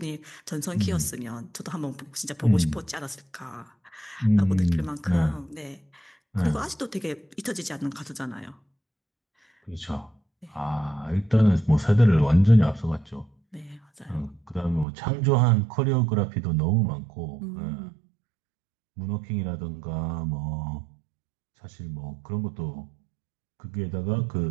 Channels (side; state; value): left; drops out; at 14.9 s